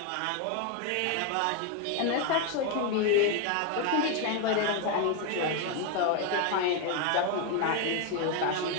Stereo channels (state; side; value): different; both; correlation 0.02